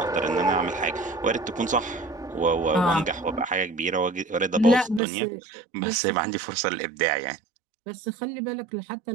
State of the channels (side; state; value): left; drops out; at 5.0 s